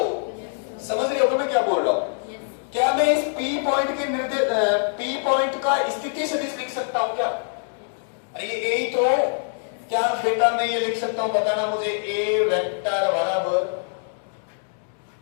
समझ रहे हो तो मैं क्या बोल रहा हूं? क्या मैं इस P पॉइंट का स्थिति सदिश लिख सकता हूं क्या? अरे ये A ही तो है। क्या बेटा मैं ये लिख सकता हूं? बताना मुझे। A वेक्टर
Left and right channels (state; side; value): silent; right; digital silence